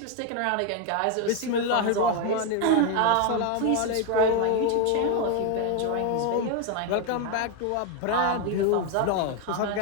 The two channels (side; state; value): both; different; correlation 0.01